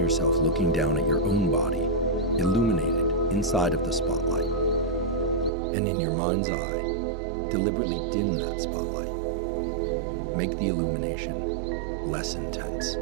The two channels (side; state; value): left; drops out; at 5.5 s